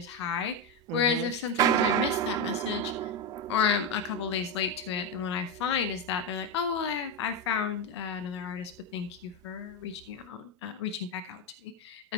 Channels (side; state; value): both; normal; correlation 0.09